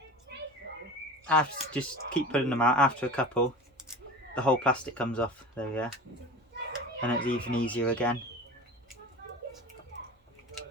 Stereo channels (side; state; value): both; normal; correlation 0.34